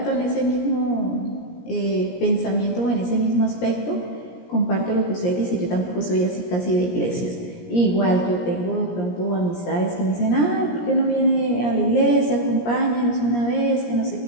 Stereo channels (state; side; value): late; right; 17 ms